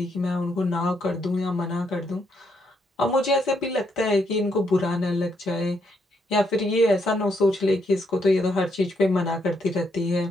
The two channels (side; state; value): both; normal; correlation 0.76